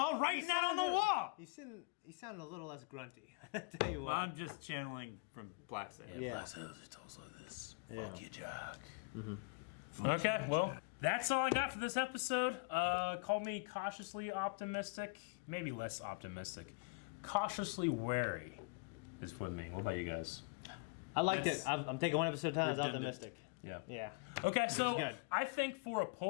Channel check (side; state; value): right; quieter; 29.6 dB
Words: writing that on the wall. He sounded a little less grunty. I tell you Well, what. I'm just channeling from Black Sand. Yeah. Black Sails, it talks like this. Yeah. Fuck you, Jack. Okay, well, that's all I got for this episode. Call me cautiously optimistic, maybe less optimistic. Cautiously wary is what I mean. What about you guys? I liked it. I'm taking one episode at a time. I was optimistic. Yeah. Yeah. Okay, so good. I think for a